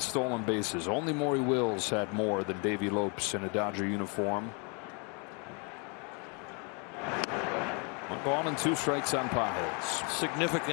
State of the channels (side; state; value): right; quieter; 34.6 dB